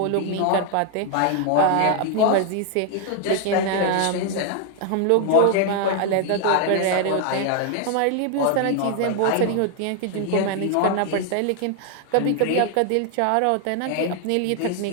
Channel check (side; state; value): both; different; correlation 0.00